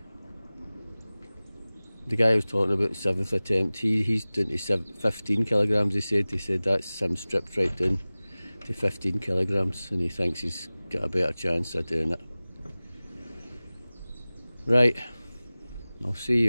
The guy I was talking about, 7th attempt, he's doing to 15 kilograms. He said that's him stripped right down to 15 kilograms, and he thinks he's got a better chance of doing it. Right, I'll see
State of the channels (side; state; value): both; inverted; correlation -0.98